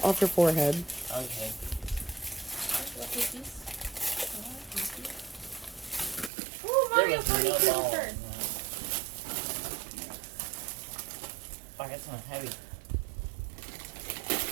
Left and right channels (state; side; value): drops out; left; at 6.3 s